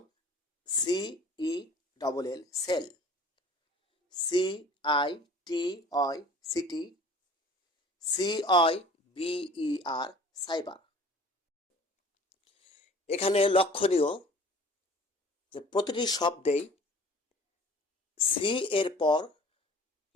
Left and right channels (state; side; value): normal; both; correlation 0.47